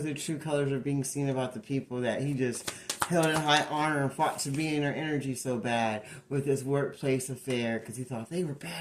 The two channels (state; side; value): identical; both; correlation 1.00